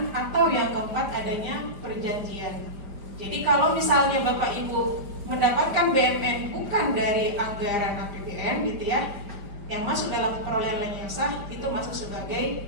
atau yang keempat adanya perjanjian. Jadi kalau misalnya Bapak Ibu mendapatkan BMN bukan dari anggaran APBN gitu ya, yang masuk dalam perolehan lain yang sah itu masuk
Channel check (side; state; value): left; late; 5.0 ms